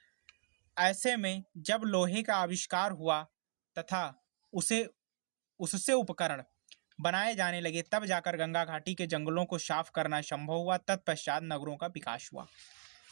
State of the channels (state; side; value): silent; left; digital silence